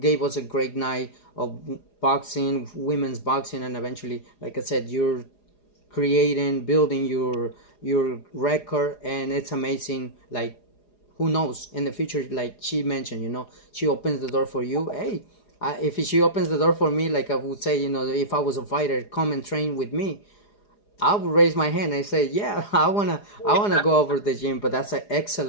us a great night of boxing, women's boxing, and eventually, like I said, you're building your record, and it's amazing. Like, who knows, in the future, like she mentioned, you know, she opens the door for you. Hey, if she opens the door for me, like I would say, you know, if I was a fighter, come and train with me, I would raise my hand and say, yeah, I wanna go over the gym. But that's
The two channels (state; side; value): late; right; 4.9 ms